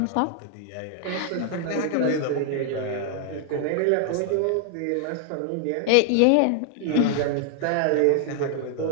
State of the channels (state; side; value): different; both; correlation 0.00